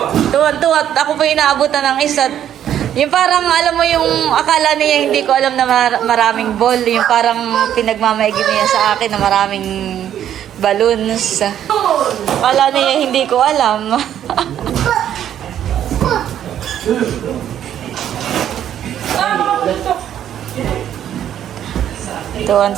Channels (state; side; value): quieter; left; 10.5 dB